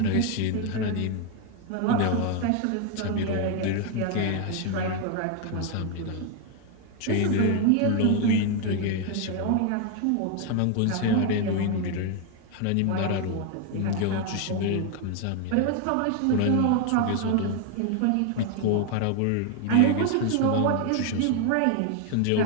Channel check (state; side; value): different; both; correlation 0.01